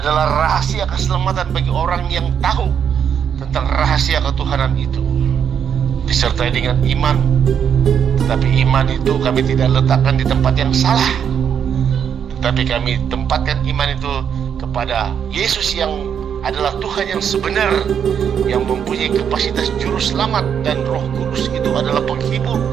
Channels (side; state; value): left; quieter; 8.0 dB